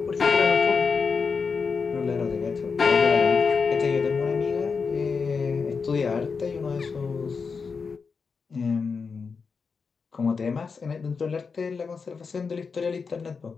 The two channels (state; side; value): quieter; right; 5.2 dB